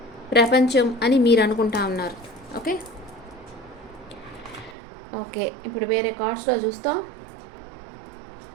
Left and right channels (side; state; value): left; drops out; at 4.8 s